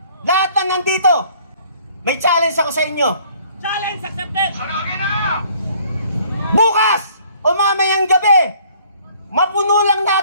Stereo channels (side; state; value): both; inverted; correlation -0.58